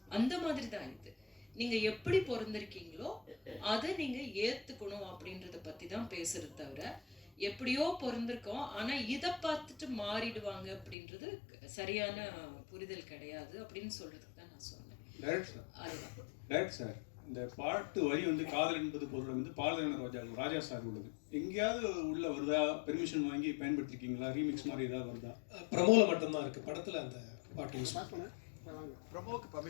அந்த மாதிரி தான் இது. நீங்கள் எப்படி பிறந்திருக்கீங்களோ அதை நீங்கள் ஏற்றுக்கணும் அப்படின்றத பற்றி தான் பேசுறது தவிர, எப்படியோ பிறந்திருக்கோம் ஆனால் இதை பார்த்துட்டு மாறிடுவாங்க அப்படின்றது சரியான புரிதல் கிடையாது அப்படின்னு சொல்றதுக்கு தான் நான் சொன்னேன். டேரக்ட் சார், இந்த பாட்டு வரி வந்து காதல் என்பது பொருள் வந்து பாலதேவன ராஜா சார் உள்ளது. எங்கேயாவது உள்ள வருதா? பெர்மிஷன் வாங்கி பயன்படுத்திருக்கீங்களா? ரீமிக்ஸ் மாதிரி ஏதாவது வருதா? ப்ரமோல மட்டும்தான் இருக்கு, படத்துல அந்த பாட்டு யூஸ் பண்ண ப்ரமோக்கு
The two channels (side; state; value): right; drops out; at 11.0 s